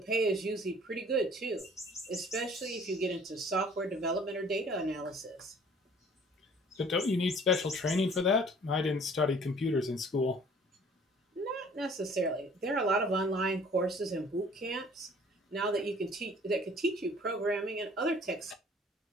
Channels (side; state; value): both; normal; correlation 0.53